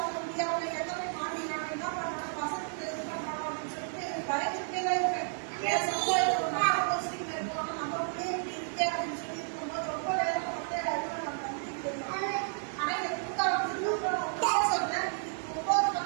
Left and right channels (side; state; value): left; silent; 56 dB below the other